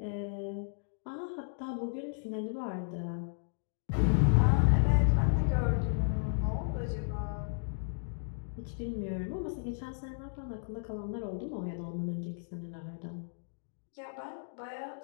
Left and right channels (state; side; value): silent; right; digital silence